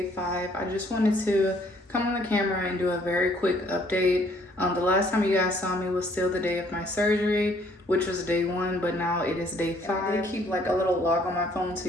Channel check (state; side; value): normal; both; correlation 0.63